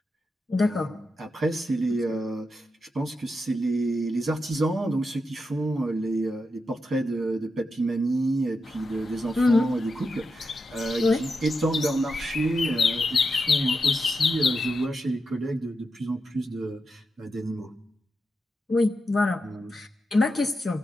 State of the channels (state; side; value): normal; both; correlation 0.86